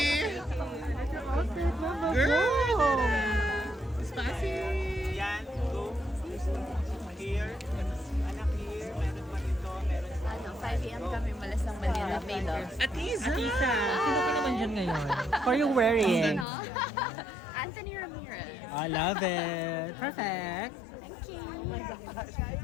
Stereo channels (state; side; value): drops out; right; at 16.4 s